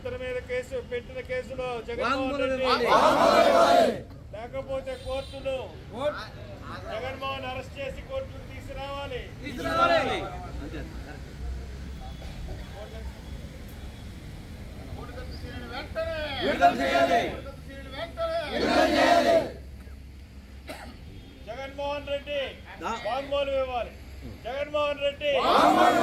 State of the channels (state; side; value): identical; both; correlation 1.00